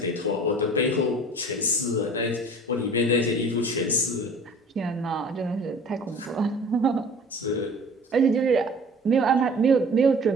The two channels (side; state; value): both; normal; correlation 0.46